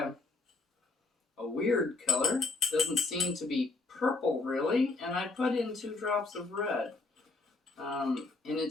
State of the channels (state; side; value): quieter; right; 3.5 dB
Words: weird color. Doesn't seem to be purple, really. And I put in 2 drops of red. And